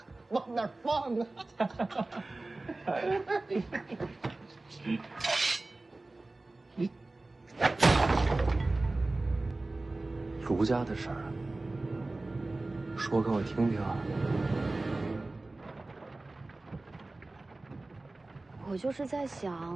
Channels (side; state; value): left; quieter; 3.1 dB